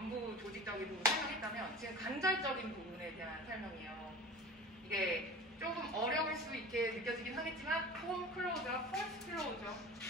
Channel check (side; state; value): both; normal; correlation 0.36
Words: 조직적인 부분 설명했다면 지금 관절적인 부분에 대한 설명이에요. 이게 조금 어려울 수 있게 느껴지긴 하겠지만 폼 클로저, 폴스 클로저